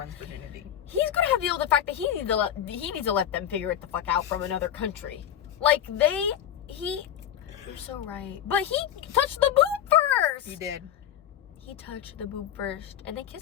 virginity. He's gonna have to deal with the fact that he needs to let them figure it the fuck out from another country. Like, you're so right. But he touched the boob first! He did. He touched the boob first, and they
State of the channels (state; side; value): quieter; right; 10.5 dB